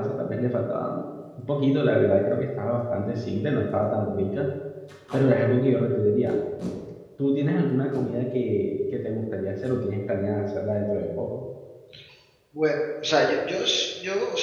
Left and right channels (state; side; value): identical; both; correlation 1.00